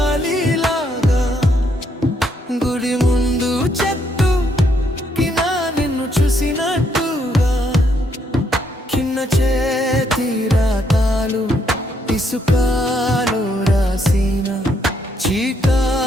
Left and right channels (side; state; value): both; normal; correlation 0.73